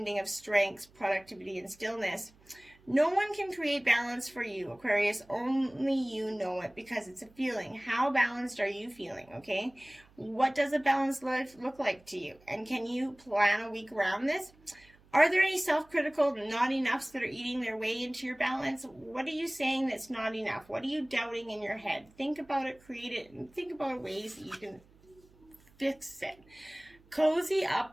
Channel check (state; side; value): noise; right; hum, 28 dB below the sound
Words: of strengths, productivity, and stillness. No one can create balance for you, Aquarius. Only you know it because it's a feeling. How balanced are you feeling, okay? What does a balanced life look like to you? And can you plan a week around this? Are there any self-critical not enoughs that are eating their way into your balance? What are you saying that's not enough? What are you doubting in your head? Think about it, create it, and think about ways that you can fix it. Cozy up